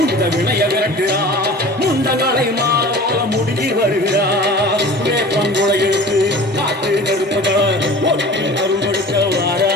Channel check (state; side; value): normal; both; correlation 0.40